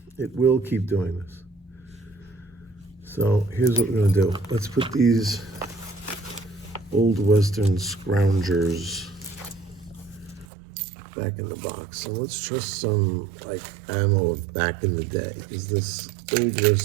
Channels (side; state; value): left; drops out; at 10.5 s